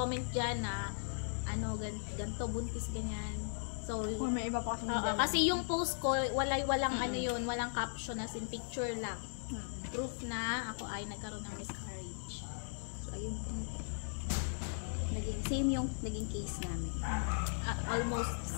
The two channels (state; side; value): silent; right; digital silence